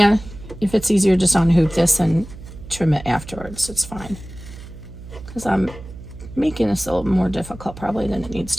if it's easier, just unhoop this and trim it afterwards. It's fine. Because I'm making this a little more difficult probably than it needs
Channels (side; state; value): right; noise; hum, 15 dB below the sound